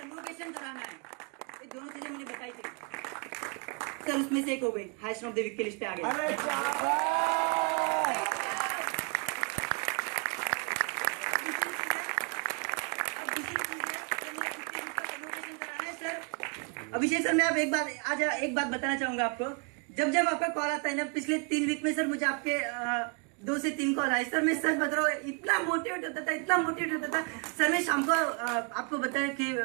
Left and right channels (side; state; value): left; quieter; 35.4 dB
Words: कन्वोकेशन कराना है। ये दोनों चीजें मैंने बताई थी सर, उसमें से एक हो गई, हाईएस्ट ऑफ द वीक की लिस्ट पे आ गया। अभिषेक सर मैं एक बात बताना चाहूंगा आपको। जब आपका कॉल आता है ना, पिछले 3 वीक में सर मुझे आपके 2 से 3 कॉल आई। सर मैं सच बता रहा हूँ, इतना मोटिवेट होता था, इतना मोटिवेट होता था। सर मैं शाम को आपको बताया कि